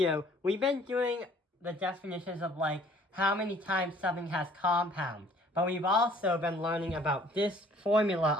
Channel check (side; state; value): both; normal; correlation 0.56